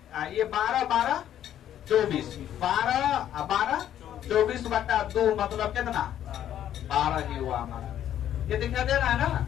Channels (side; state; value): right; quieter; 10.9 dB